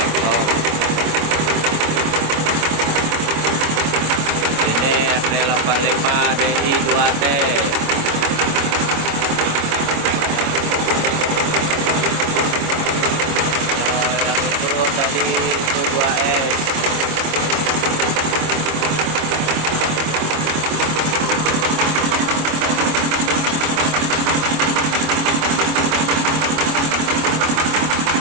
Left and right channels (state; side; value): late; left; 25 ms